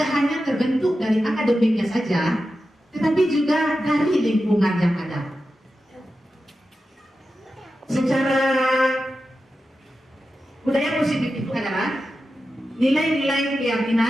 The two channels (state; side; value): normal; both; correlation 0.91